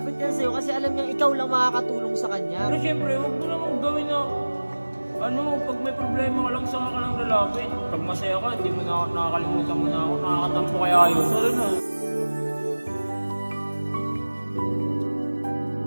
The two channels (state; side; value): inverted; both; correlation -1.00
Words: yan sa'yo kasi alam niyang ikaw lang makakatulong sa kanya. Pero syempre, huwag mo namang gawin na pag may problema ka lang, saka ka lang lalapit. Pag masaya ka, hindi mo na nakakalimutan mo na ako. Nakakatampo kaya yun. Sorry na.